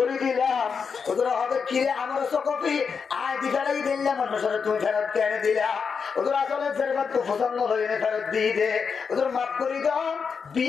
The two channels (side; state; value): right; quieter; 5.9 dB